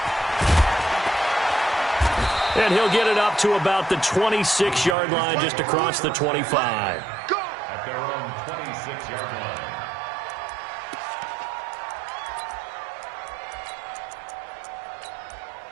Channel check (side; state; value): left; drops out; at 5.0 s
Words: And he'll get it up to about the 26-yard line, just across the 25. Go! At their own 26-yard line.